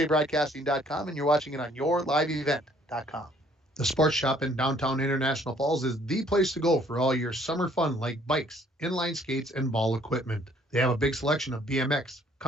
and you're watching it on yourliveevent.com. The Sports Shop in downtown International Falls is the place to go for all your summer fun like bikes, inline skates, and ball equipment. They have a big selection of BMX,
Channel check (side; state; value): both; normal; correlation 0.61